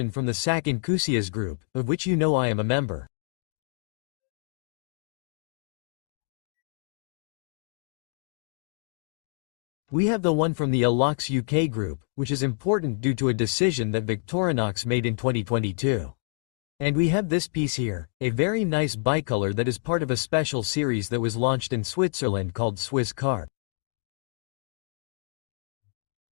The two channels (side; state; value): right; silent; 60 dB below the other